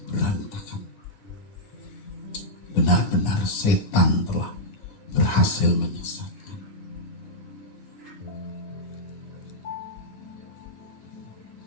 berantakan. benar-benar setan telah berhasil menyesatkan.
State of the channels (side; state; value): right; late; 9.6 ms